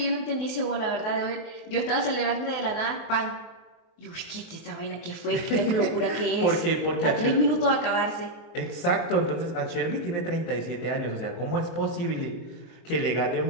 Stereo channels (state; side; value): late; right; 23 ms